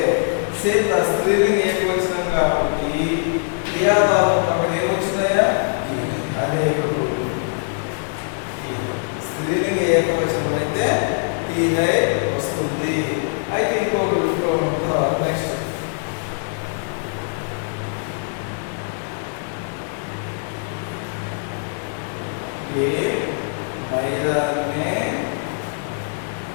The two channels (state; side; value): silent; right; 64 dB below the other